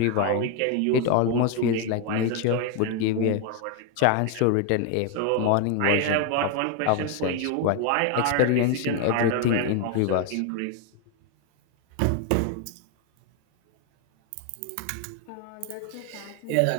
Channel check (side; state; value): both; different; correlation 0.01